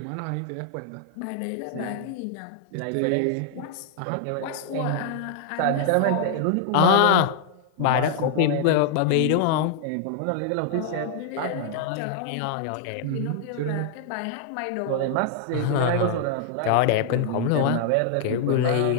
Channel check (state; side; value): different; both; correlation -0.01